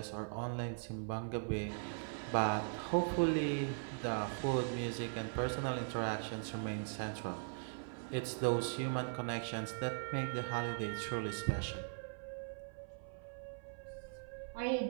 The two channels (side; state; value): left; silent; 51 dB below the other